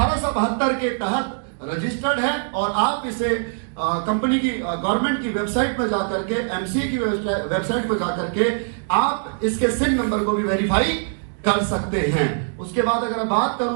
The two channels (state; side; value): silent; left; digital silence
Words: के तहत रजिस्टर्ड है और आप इसे कंपनी की गवर्नमेंट की वेबसाइट पर जाकर के, एमसीए की वेबसाइट पर जाकर के आप इसके सिन नंबर को भी वेरीफाई कर सकते हैं। उसके बाद अगर मैं बात